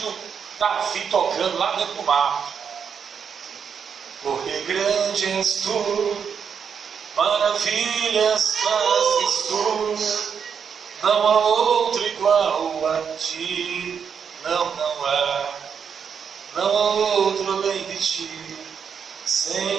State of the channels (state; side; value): quieter; left; 7.0 dB